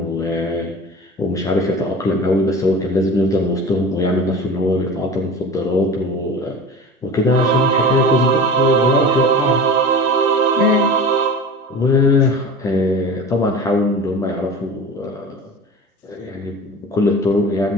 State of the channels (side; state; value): both; normal; correlation 0.35